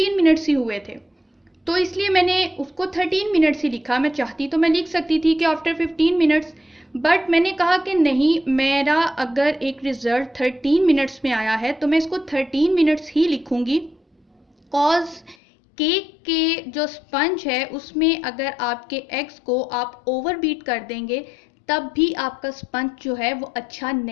मिनट्स ही हुए थे, तो इसलिए मैंने उसको 13 मिनट्स ही लिखा। मैं चाहती तो मैं लिख सकती थी कि आफ्टर 15 मिनट्स, बट मैंने कहा कि नहीं, मेरा अगर एक रिज़ल्ट 13 मिनट्स में आया है तो मैं इसको 13 मिनट्स ही लिखूंगी। कॉज केक के जो स्पंज है उसमें अगर आपके एग्स को आप ओवर बीट कर देंगे तब भी आपका स्पंज जो है वो अच्छा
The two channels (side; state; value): right; drops out; at 15.4 s